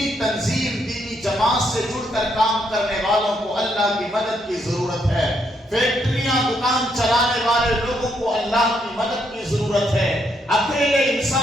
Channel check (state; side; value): normal; both; correlation 0.75